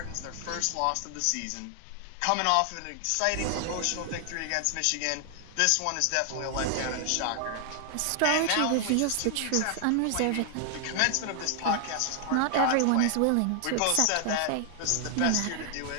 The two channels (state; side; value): different; both; correlation 0.00